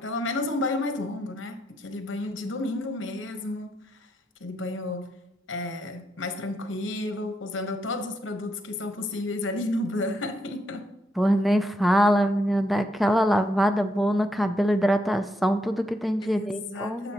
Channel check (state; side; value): normal; both; correlation 0.78